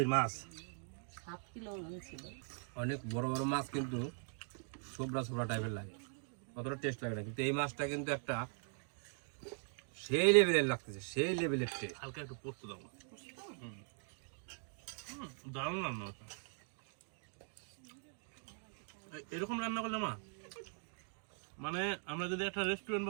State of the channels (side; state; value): left; silent; 50 dB below the other